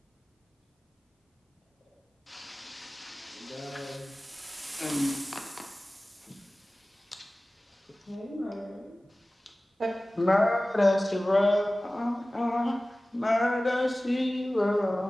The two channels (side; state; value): both; normal; correlation 0.97